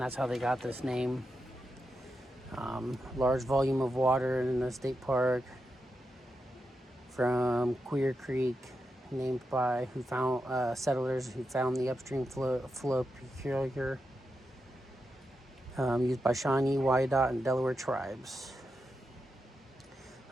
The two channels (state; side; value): normal; both; correlation 0.87